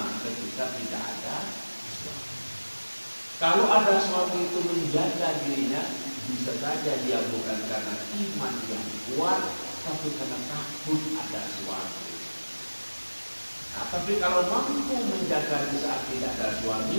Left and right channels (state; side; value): inverted; both; correlation -1.00